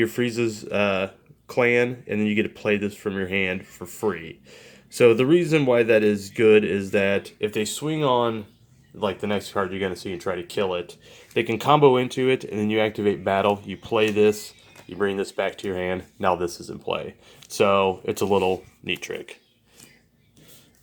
Frieza's clan, and then you get to play this from your hand for free. So the reason why that is good is that if they swing on like the next card you're going to see and try to kill it, they can combo into it, and then you activate battle, you play this, you bring this back to your hand, now this is in play. So it's a little neat trick.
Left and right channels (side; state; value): both; identical; correlation 1.00